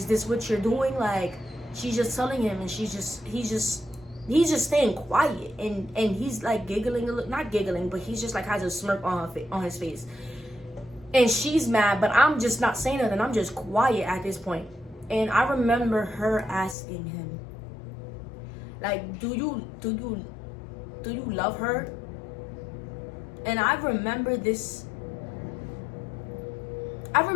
this what you're doing? Like, she's just telling him, and he's just staying quiet, and he's like giggling a little, not giggling, but he's just like has a smirk on his face, and she's mad, but I'm just not saying nothing. I'm just quiet at this point. And I remember her asking him, like, do you love her? And I remember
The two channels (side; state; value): right; drops out; at 16.8 s